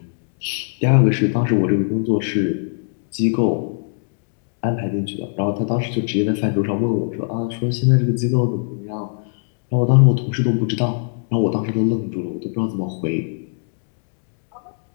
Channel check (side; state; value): right; silent; digital silence